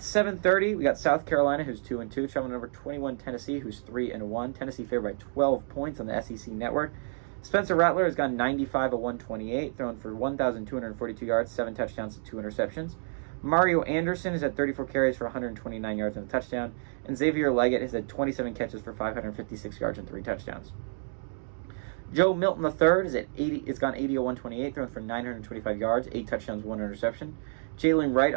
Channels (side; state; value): left; silent; digital silence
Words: we got South Carolina, who's 2-2, traveling number 21 Tennessee, who's 3-1. Tennessee favored by 12 points on the SEC network. Spencer Rattler has gone 95 of 128, thrown for 1,242 yards, 7 touchdowns to 2 interceptions. Mario Anderson has had 34 carries for 129 yards and a touchdown, and Xavier Leggett has had 27 catches for 556 yards and 3 touchdowns. Joe Milton III has gone 80 of 128, thrown for 925 yards, 8 touchdowns, 1 interception. Jalen Wright